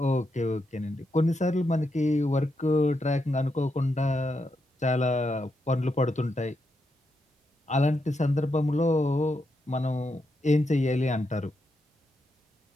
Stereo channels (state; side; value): normal; both; correlation 0.83